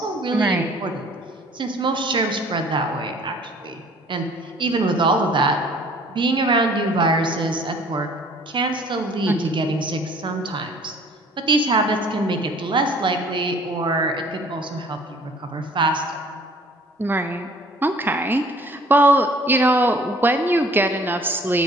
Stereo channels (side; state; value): both; normal; correlation 0.54